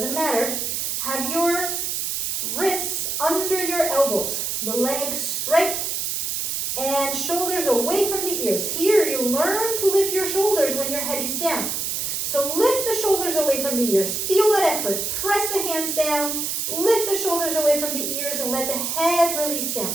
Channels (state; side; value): noise; right; hiss, 1 dB below the sound